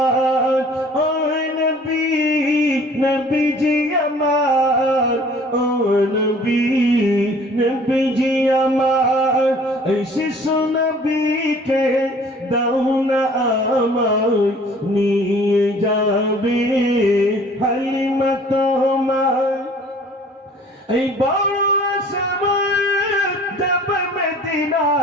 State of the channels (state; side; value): normal; both; correlation 0.52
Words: ও নবী নবীজি আমার, ও নবী নবীজি আমার, এই শিশু নবীকে দাও না আমায়, নিয়ে যাবে হালিমা তোমায়, এই বড় সময় যাব